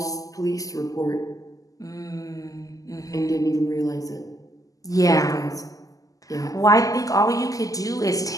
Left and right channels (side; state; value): right; late; 0.17 ms